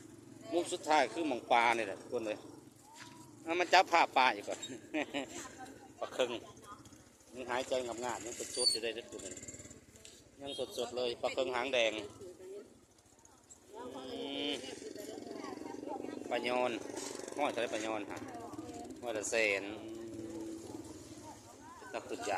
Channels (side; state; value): both; identical; correlation 1.00